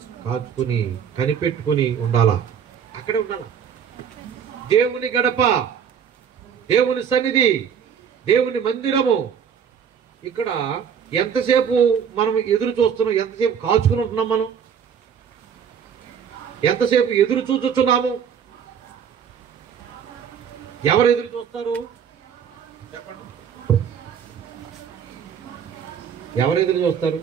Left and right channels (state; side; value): quieter; left; 7.7 dB